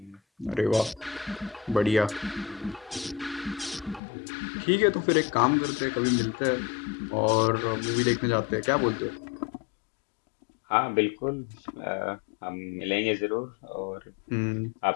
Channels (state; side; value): drops out; right; at 4.0 s